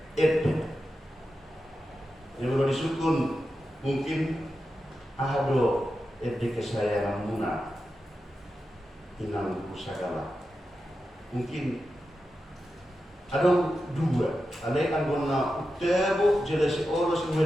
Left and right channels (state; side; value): normal; both; correlation 0.90